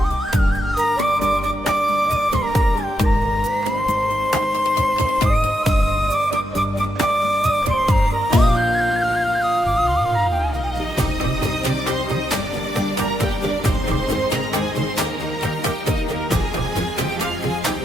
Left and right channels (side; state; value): both; normal; correlation 0.81